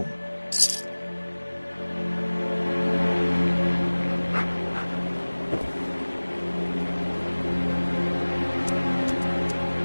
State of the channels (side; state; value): both; inverted; correlation -1.00